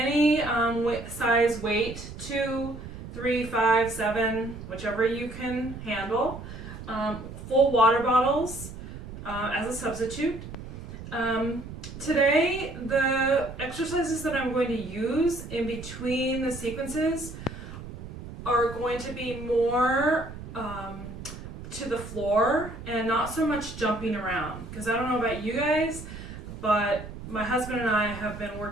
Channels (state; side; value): noise; right; rumble, 11 dB below the sound